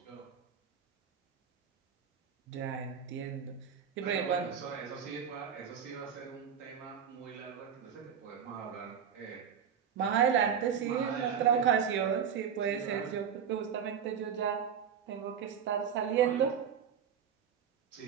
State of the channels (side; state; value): left; quieter; 7.8 dB